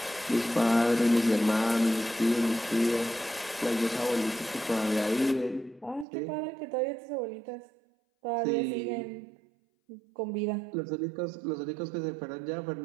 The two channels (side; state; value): left; drops out; at 6.1 s